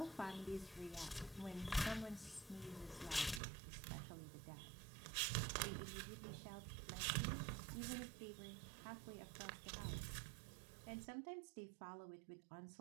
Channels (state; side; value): drops out; left; at 3.4 s